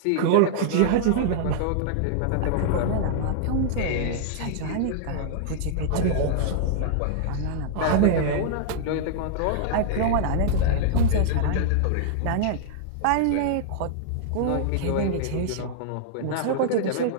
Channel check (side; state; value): both; different; correlation -0.01